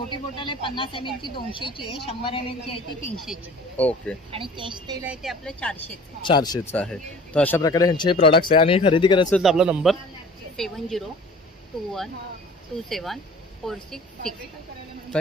बॉटल आहे 50 ml ची 200ची आहे, 100 ml ची आहे ती 300ची. ओके. आणि केश तेल आहे ते आपलं 400चं. 400चं आहे. तर अशा प्रकारे ह्यांचे हे प्रोडक्ट्स आहे. आणि खरेदी करायचं तर आपला नंबर 7021274666.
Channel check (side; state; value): both; normal; correlation 0.45